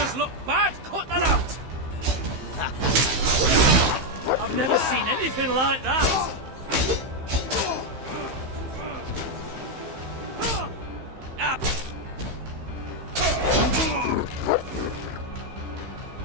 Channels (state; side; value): late; left; 15 ms